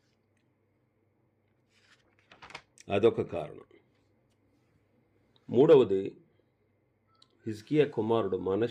అదొక కారణం. మూడవది, హిజ్కియా కుమారుడు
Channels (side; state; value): both; identical; correlation 1.00